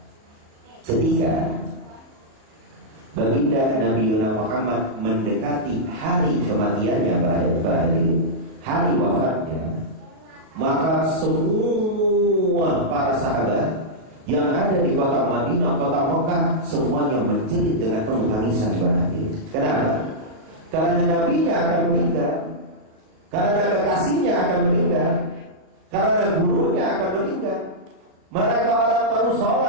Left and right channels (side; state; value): left; late; 38 ms